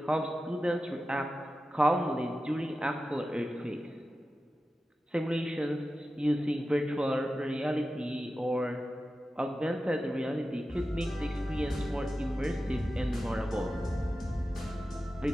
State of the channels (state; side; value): normal; both; correlation 0.93